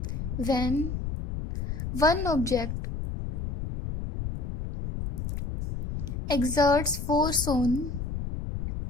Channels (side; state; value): left; noise; rumble, 5 dB below the sound